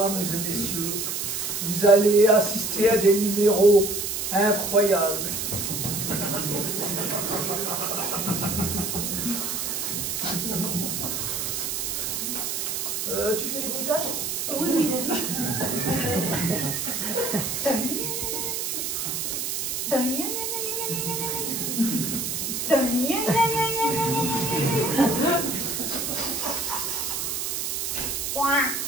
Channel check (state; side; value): noise; right; hiss, 2 dB below the sound